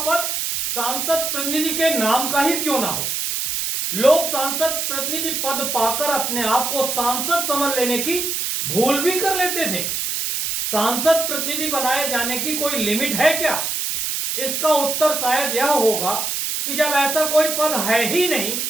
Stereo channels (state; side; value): noise; right; hiss, 1 dB below the sound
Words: पद सांसद प्रतिनिधि के नाम का ही क्यों ना हो। लोग सांसद प्रतिनिधि पद पाकर अपने आप को सांसद समझ लेने की भूल भी कर लेते थे। सांसद प्रतिनिधि बनाए जाने की कोई लिमिट है क्या? इसका उत्तर शायद यह होगा कि जब ऐसा कोई पद है ही नहीं